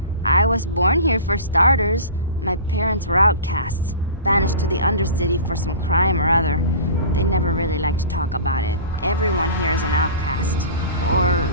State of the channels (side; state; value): both; inverted; correlation -0.36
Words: I was born here for starters. My parents were outcasts, banished to the Undercity for some crime or other. They never really liked to talk about it. Everyone here is an outcast, or